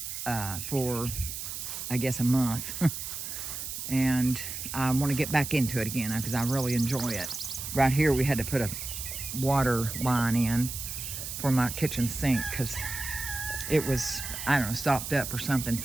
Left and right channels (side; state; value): right; noise; hiss, 6 dB below the sound